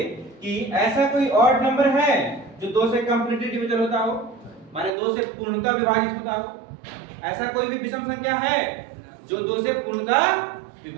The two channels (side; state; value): left; drops out; at 4.9 s